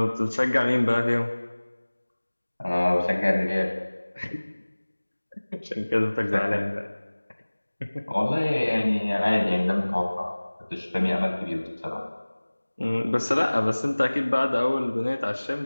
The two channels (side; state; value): both; inverted; correlation -1.00